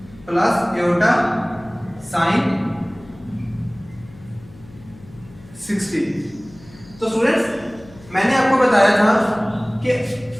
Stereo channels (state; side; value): noise; left; hum, 22 dB below the sound